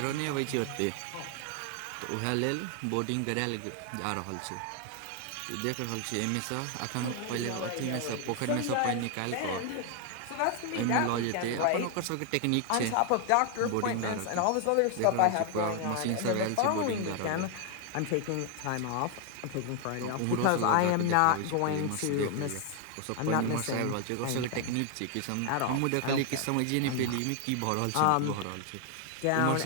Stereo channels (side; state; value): both; different; correlation 0.01